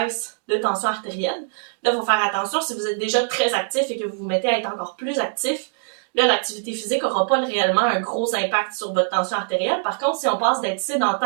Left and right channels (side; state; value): left; silent; digital silence